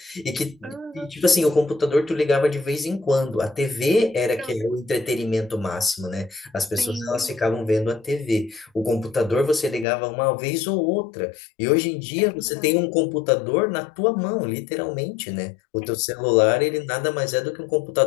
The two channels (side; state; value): right; drops out; at 9.9 s